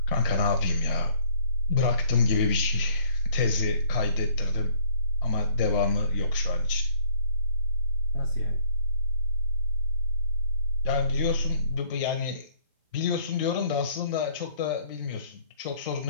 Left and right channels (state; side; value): inverted; both; correlation -0.60